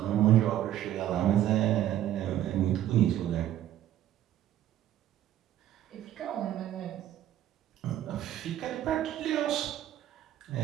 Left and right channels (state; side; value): quieter; left; 12.3 dB